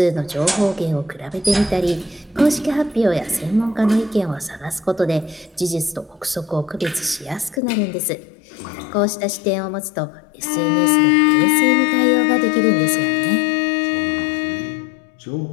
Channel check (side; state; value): right; drops out; at 7.6 s